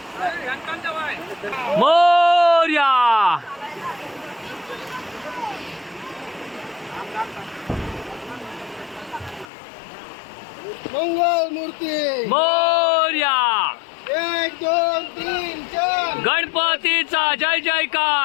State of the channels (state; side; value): drops out; right; at 9.5 s